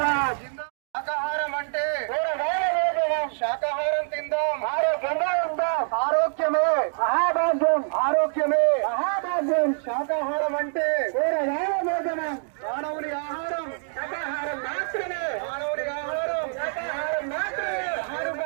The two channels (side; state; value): left; silent; digital silence